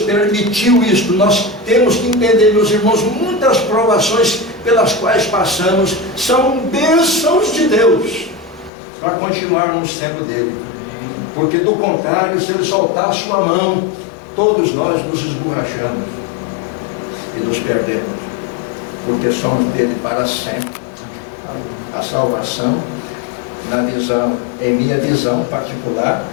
isso. Nós temos que entender, meus irmãos, muitas provações pelas quais passamos são bênçãos de Deus, para continuarmos sendo dele. Porque do contrário, se ele soltar a sua mão, todos nós nos esborrachamos e nos perdemos, porque somos dele para sempre. A salvação, na visão, em minha visão particular,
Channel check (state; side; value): drops out; right; at 8.7 s